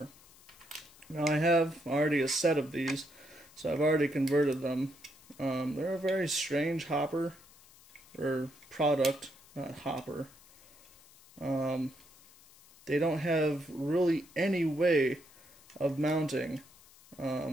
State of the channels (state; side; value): noise; left; hiss, 25 dB below the sound